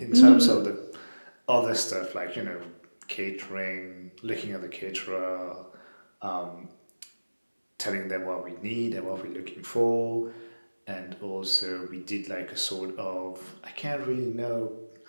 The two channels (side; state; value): both; inverted; correlation -1.00